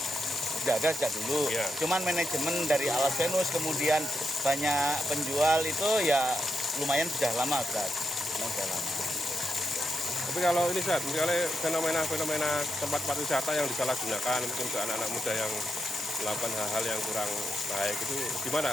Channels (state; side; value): normal; both; correlation 0.83